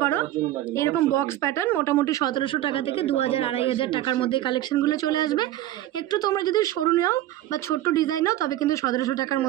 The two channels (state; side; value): quieter; left; 14.0 dB